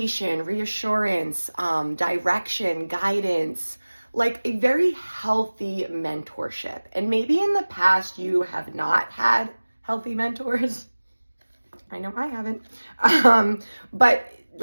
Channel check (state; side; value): inverted; both; correlation -1.00